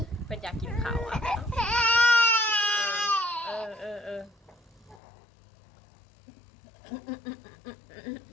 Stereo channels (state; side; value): drops out; right; at 5.0 s